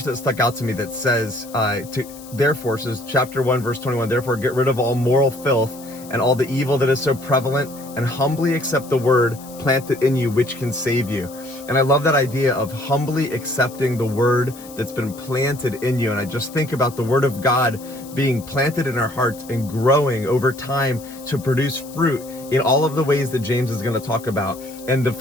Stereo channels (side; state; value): left; noise; hiss, 19 dB below the sound